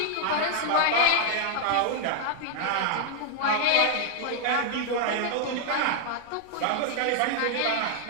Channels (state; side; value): different; both; correlation 0.00